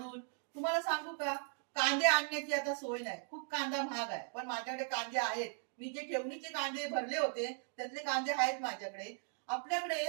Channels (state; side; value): silent; left; 52 dB below the other